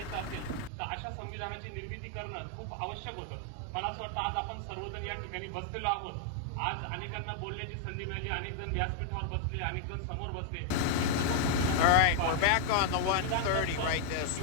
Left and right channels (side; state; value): both; different; correlation 0.00